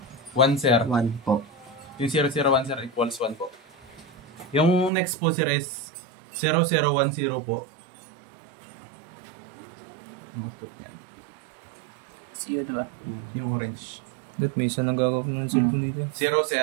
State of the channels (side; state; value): left; drops out; at 4.9 s